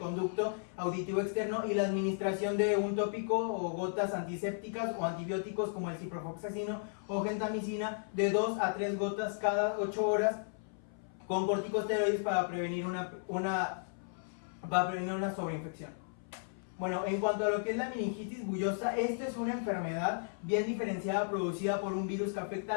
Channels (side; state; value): right; silent; 55 dB below the other